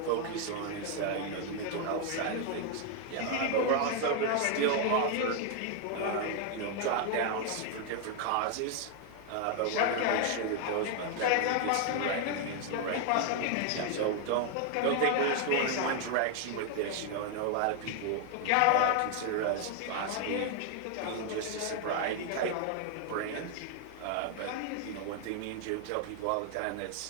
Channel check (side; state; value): both; different; correlation 0.00